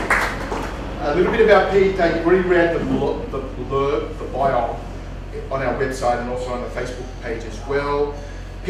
A little bit about Pete. You've already read the blurb, the bio on our website and also on the Facebook page as well.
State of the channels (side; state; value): both; identical; correlation 1.00